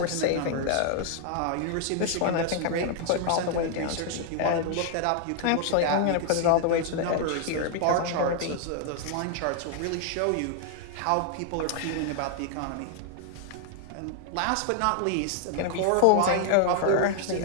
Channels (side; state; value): both; different; correlation 0.00